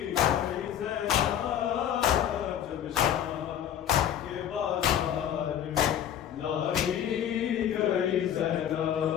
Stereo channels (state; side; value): quieter; right; 10.1 dB